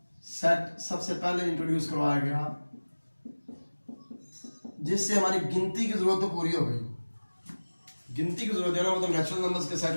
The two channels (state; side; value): inverted; both; correlation -1.00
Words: सेट सबसे पहले इंट्रोड्यूस करवाया गया, जिससे हमारी गिनती की जरूरत तो पूरी हो गई। गिनती की जरूरत है ना वो तो नेचुरल नंबर्स के सेट